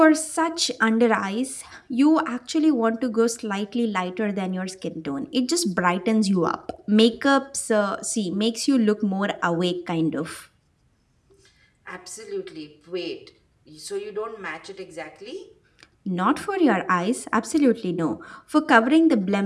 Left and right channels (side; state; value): both; identical; correlation 1.00